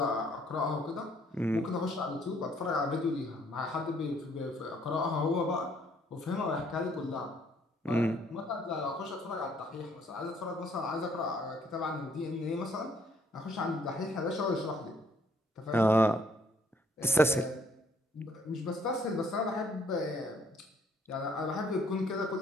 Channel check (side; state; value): both; normal; correlation 0.65